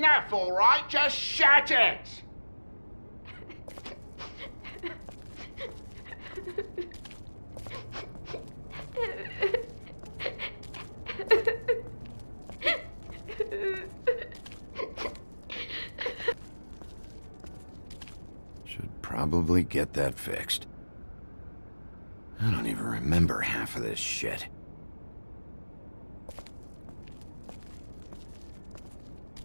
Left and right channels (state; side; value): inverted; both; correlation -1.00